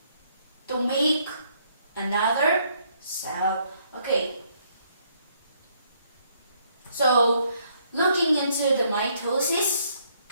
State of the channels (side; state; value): both; inverted; correlation -0.69